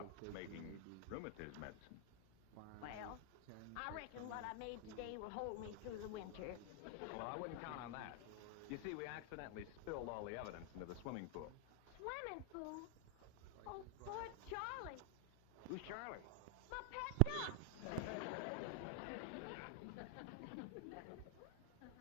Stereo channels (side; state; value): both; different; correlation 0.00